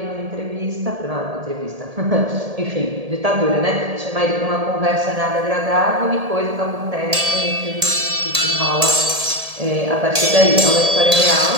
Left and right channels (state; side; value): late; left; 1.7 ms